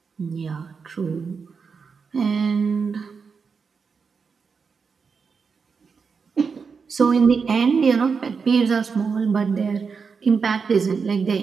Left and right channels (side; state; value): left; quieter; 5.5 dB